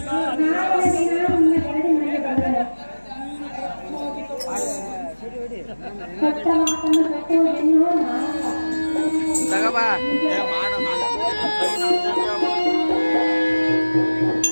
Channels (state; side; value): inverted; both; correlation -1.00